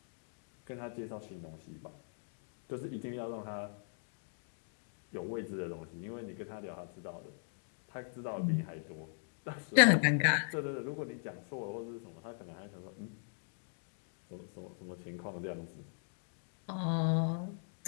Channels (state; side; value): silent; right; digital silence